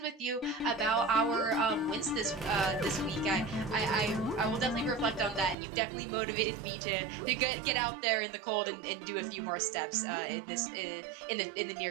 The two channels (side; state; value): left; drops out; at 5.6 s